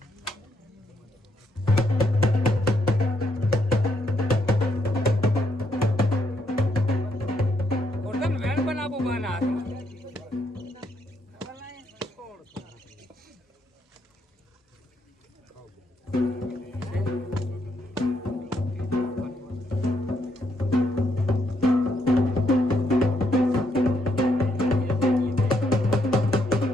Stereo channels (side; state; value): both; normal; correlation 0.75